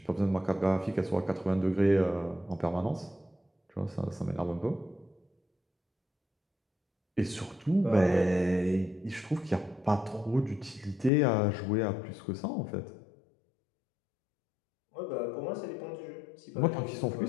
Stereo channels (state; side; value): drops out; right; at 11.1 s